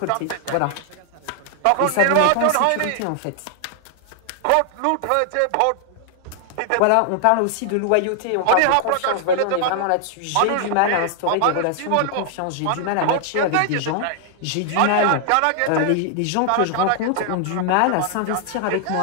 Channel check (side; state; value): both; different; correlation 0.00